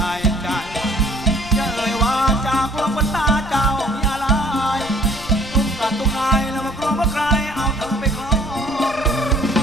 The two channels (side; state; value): left; noise; rumble, 16 dB below the sound